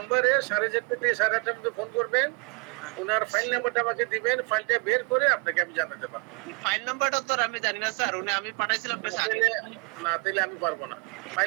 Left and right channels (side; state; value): left; quieter; 33.4 dB